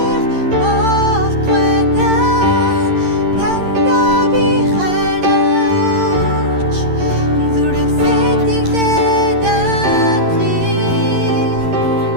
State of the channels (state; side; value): late; left; 11 ms